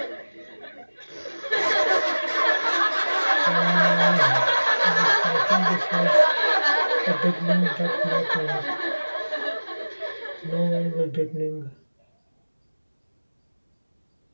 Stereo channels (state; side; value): inverted; both; correlation -1.00